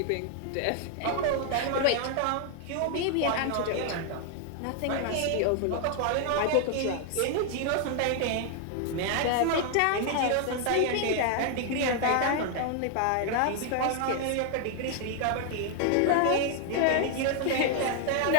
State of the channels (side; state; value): both; different; correlation 0.00